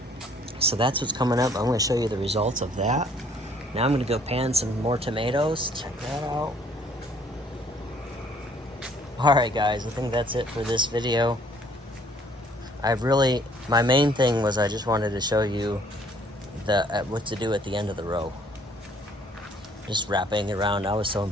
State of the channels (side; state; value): both; normal; correlation 0.60